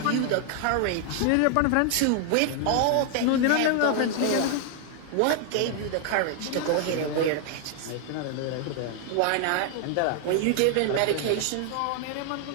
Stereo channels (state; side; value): different; both; correlation 0.00